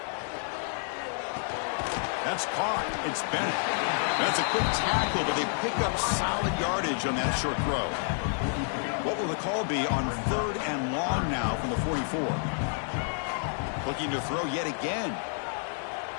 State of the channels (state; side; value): silent; right; 58 dB below the other